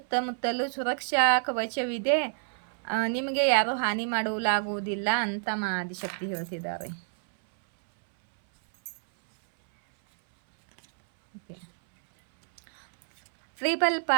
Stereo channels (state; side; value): silent; left; 59 dB below the other